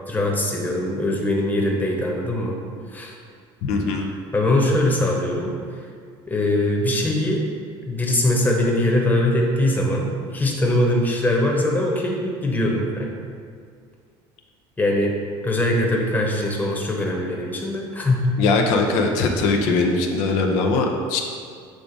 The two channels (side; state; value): both; normal; correlation 0.52